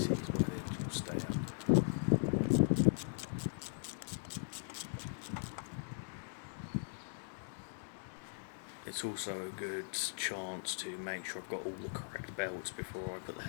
where the engine will stay up. It's also a good chance to make sure I've got all the correct belts before I put the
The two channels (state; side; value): silent; right; digital silence